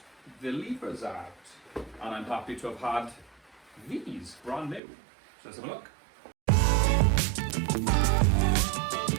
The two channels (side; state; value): left; drops out; at 4.8 s